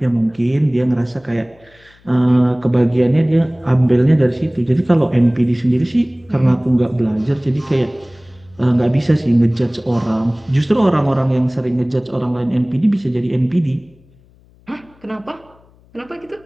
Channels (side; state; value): left; noise; hum, 30 dB below the sound